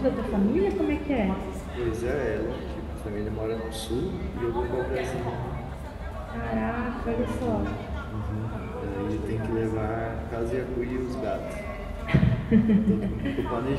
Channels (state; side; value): identical; both; correlation 1.00